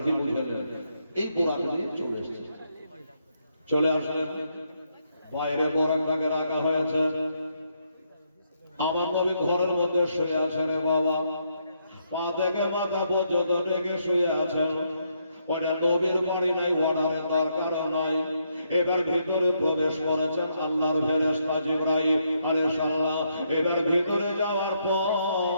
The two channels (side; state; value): both; inverted; correlation -0.76